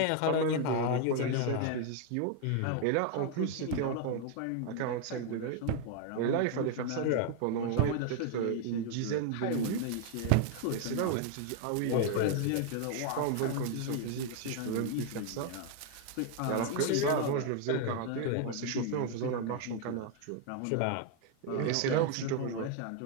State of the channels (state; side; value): different; both; correlation 0.00